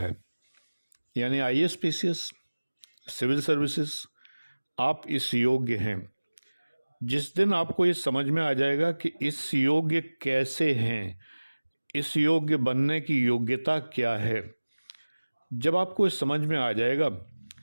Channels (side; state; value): both; inverted; correlation -1.00